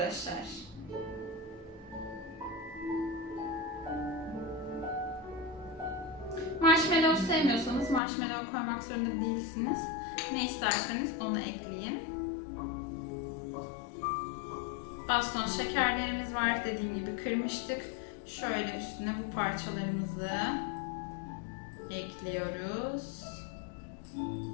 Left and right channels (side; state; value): right; drops out; at 8.0 s